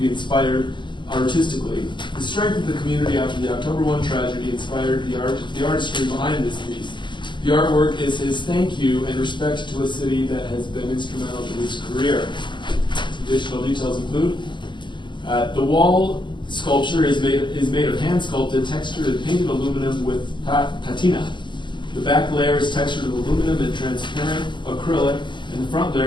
be inspired artistically. The strength of the community after the October 1 tragedy inspired the artistry behind this piece. The artwork is his thank you and respect to a city that has been instrumental to his career. Some additional details include the wall sculpture is made of hand-sculpted, textured, and painted aluminum with patina. The back layer is textured with aluminum and transparent acrylic, and the front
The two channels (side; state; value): right; late; 0.23 ms